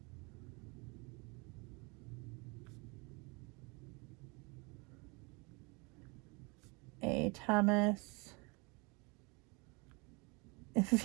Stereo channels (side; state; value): left; quieter; 29.5 dB